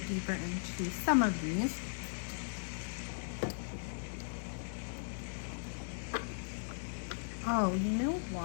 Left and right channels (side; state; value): right; silent; digital silence